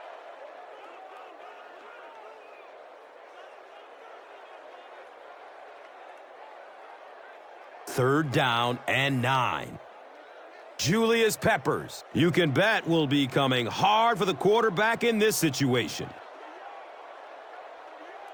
Third down and 9. Julius Peppers, you can bet, will be coming hard for the quarterback in this situation.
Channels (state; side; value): identical; both; correlation 1.00